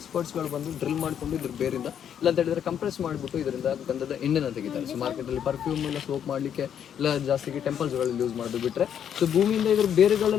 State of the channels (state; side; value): quieter; right; 9.0 dB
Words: ಬಂದು ಡ್ರಿಲ್ ಮಾಡ್ಕೊಂಡು ಇದ್ರ ಬೇರಿಂದ ಇಲ್ಲ ಅಂತ ಹೇಳಿದ್ರೆ ಕಂಪ್ರೆಸ್ ಮಾಡಿಬಿಟ್ಟು ಇದರಿಂದ ಗಂಧದ ಎಣ್ಣೆನ ತೆಗಿತಾರೆ. ಸೊ ಮಾರ್ಕೆಟಲ್ಲಿ ಪರ್ಫ್ಯೂಮ್ ಇಲ್ಲ ಸೋಪ್ ಮಾಡಲಿಕ್ಕೆ ಇಲ್ಲ ಜಾಸ್ತಿಗೆ ಟೆಂಪಲ್ಸ್ಗಳಲ್ಲಿ ಯೂಸ್ ಮಾಡೋದು ಬಿಟ್ರೆ, ಸೊ ಭೂಮಿಯಿಂದ ಇದ್ರ